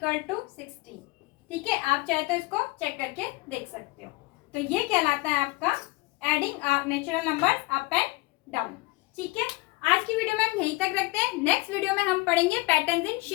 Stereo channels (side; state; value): right; quieter; 23.1 dB